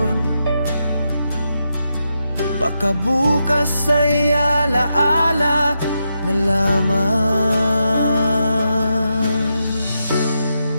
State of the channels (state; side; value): inverted; both; correlation -0.85